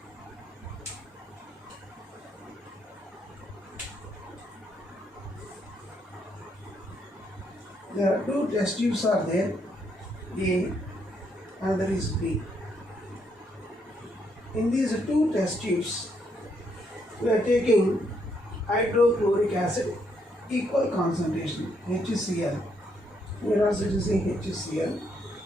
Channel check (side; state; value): both; normal; correlation 0.74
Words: There are two test tubes are there, A and there is B. In these two test tubes, we are taking hydrochloric acid equal concentration HCl. Here also it is saying HCl.